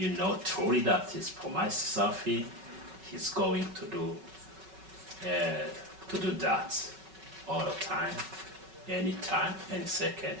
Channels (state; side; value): late; left; 5.3 ms